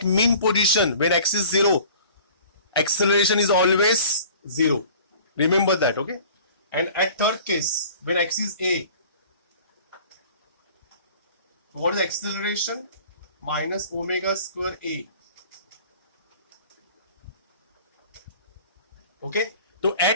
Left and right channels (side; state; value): both; inverted; correlation -0.47